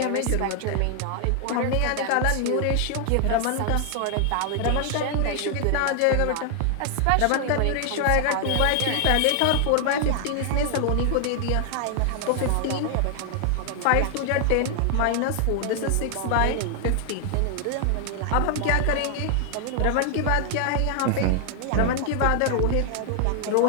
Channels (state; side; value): different; both; correlation 0.00